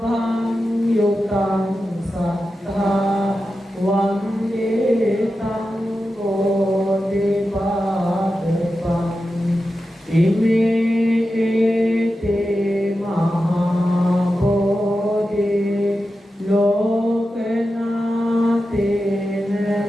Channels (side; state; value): both; normal; correlation 0.91